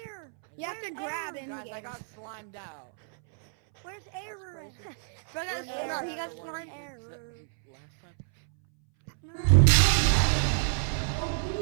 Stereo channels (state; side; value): silent; left; 59 dB below the other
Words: You have to grab it. Guys, I got slimed out. Where's air? That's crazy. Bro, Where's no, air? he got The one we slime did error. last time.